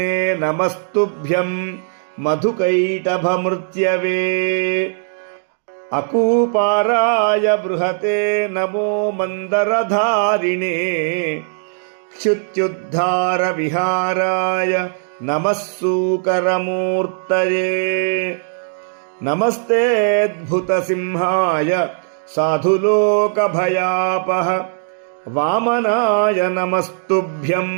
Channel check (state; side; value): silent; left; digital silence